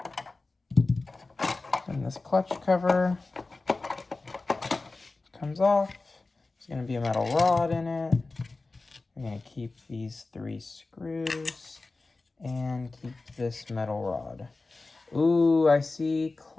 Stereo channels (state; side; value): quieter; right; 3.5 dB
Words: And this clutch cover comes off. There's going to be a metal rod in it. We're going to keep these 3 screws and keep this metal rod. Ooh, I see